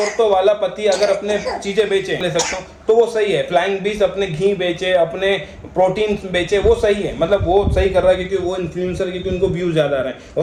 वाला पति अगर अपने चीजें बेचे, ले सकता हूँ तो वो सही है। फ्लाइंग बीस अपने घी बेचे, अपने प्रोटीन बेचे, वो सही है। मतलब वो सही कर रहा है क्योंकि वो इन्फ्लुएंसर, क्योंकि उनको व्यूज ज्यादा आ रहे हैं।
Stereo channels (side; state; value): both; identical; correlation 1.00